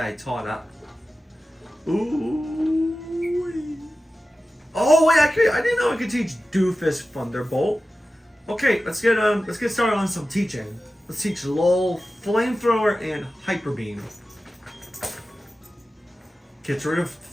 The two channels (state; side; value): normal; both; correlation 0.94